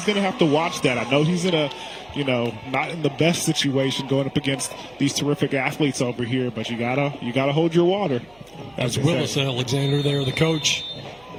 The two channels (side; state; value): right; noise; hum, 29 dB below the sound